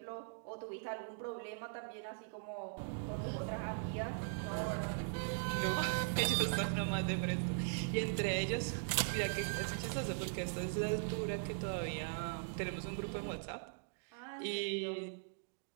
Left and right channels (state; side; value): silent; left; digital silence